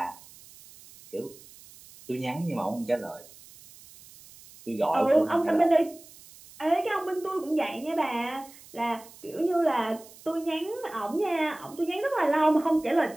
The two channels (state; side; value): noise; right; hiss, 21 dB below the sound